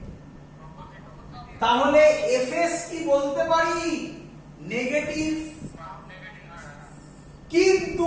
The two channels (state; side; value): identical; both; correlation 1.00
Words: তাহলে Fs কি বলতে পারি? নেগেটিভ।